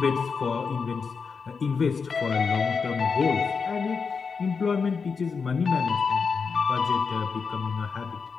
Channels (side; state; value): right; quieter; 5.4 dB